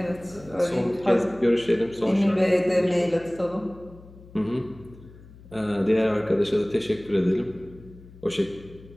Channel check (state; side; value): noise; left; hum, 21 dB below the sound